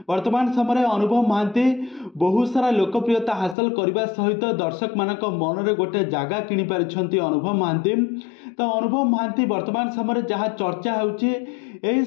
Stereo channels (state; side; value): drops out; right; at 3.6 s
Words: वर्तमान समय अनुभव महांती बहुत सारा लोकप्रियता हासिल करने सहित दर्शक मानक मन रे गोटे जगह किनि पारिछंती अनुभव महांती। तो अनुभव महांती वर्तमान समय जहाँ चर्चा होउछि एही